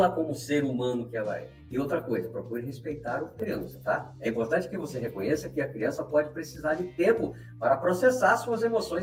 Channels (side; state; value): both; identical; correlation 1.00